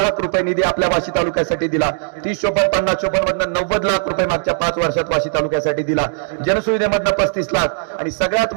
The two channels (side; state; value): left; silent; digital silence